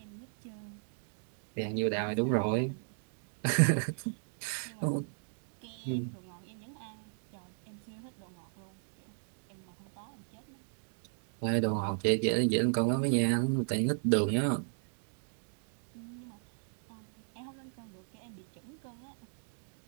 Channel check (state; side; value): silent; left; digital silence